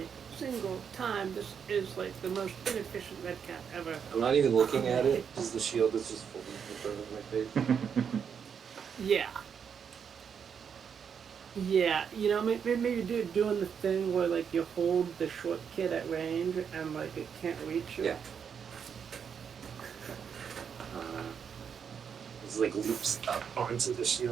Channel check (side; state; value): left; quieter; 7.2 dB